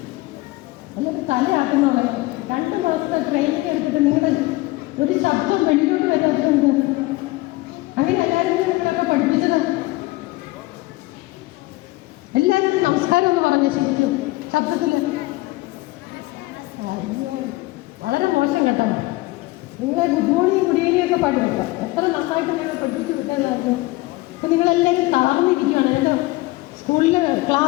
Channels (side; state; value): right; quieter; 20.7 dB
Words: ഒന്നൊരു തലയാക്കുന്നുള്ളത്. 2 മാസത്തെ training എടുത്തിട്ട് നിങ്ങളുടെ ഒരു ശബ്ദം വെളിയിലോട്ട് വരാത്തുണ്ട്. അങ്ങനെ എല്ലാവരും നിങ്ങളൊക്കെ പഠിപ്പിച്ചത്. എല്ലാവരും നമസ്കാരം എന്ന് പറഞ്ഞ ശരിക്കും ശബ്ദത്തിൽ വളരെ മോശം കേട്ടോ. നിങ്ങളെ ഗുഡ് മോർണിംഗ് ഗുഡ് ഈവനിങ് ഒക്കെ പാടി വെക്കാം. എത്ര നന്നായിട്ട് നിങ്ങൾ പഠിപ്പിച്ച് വിട്ടതായിരുന്നു. അപ്പം നിങ്ങളെല്ലാവരും തളർന്നിരിക്കുകയാണ്. എൻ്റെ സ്കൂളിൽ